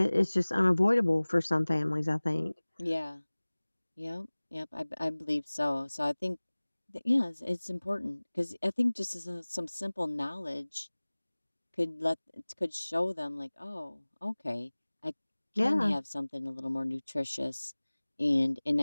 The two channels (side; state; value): both; inverted; correlation -1.00